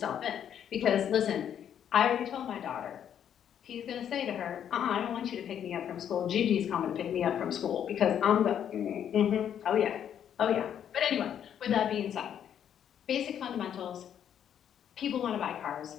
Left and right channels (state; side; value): quieter; right; 9.3 dB